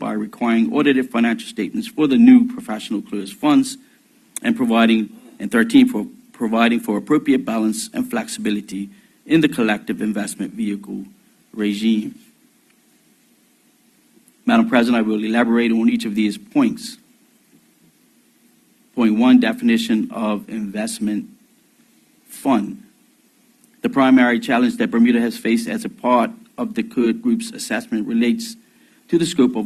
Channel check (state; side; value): identical; both; correlation 1.00